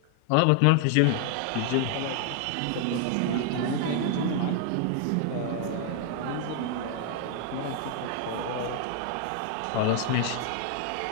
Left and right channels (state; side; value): different; both; correlation 0.00